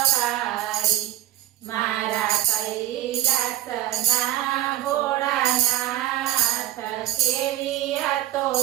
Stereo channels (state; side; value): quieter; left; 13.7 dB